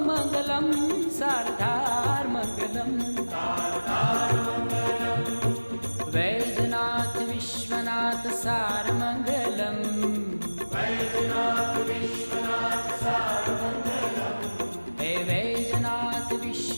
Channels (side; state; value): both; inverted; correlation -1.00